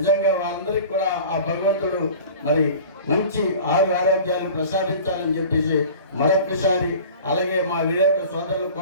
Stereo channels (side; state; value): both; inverted; correlation -0.41